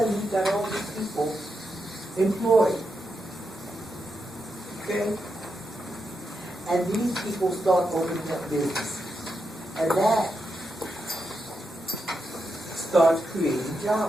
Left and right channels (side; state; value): both; normal; correlation 0.85